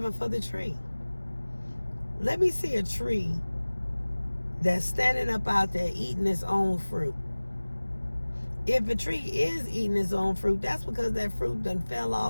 for the tree. Let me see a tree that's standing up out there eating its own fruit. If a tree is eating its own fruit, that's because that fruit done fell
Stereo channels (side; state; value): both; inverted; correlation -1.00